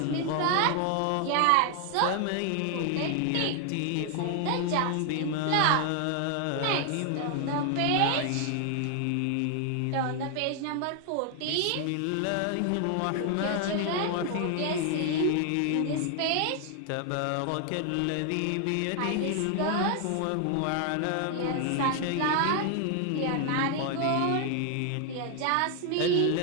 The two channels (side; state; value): both; different; correlation 0.00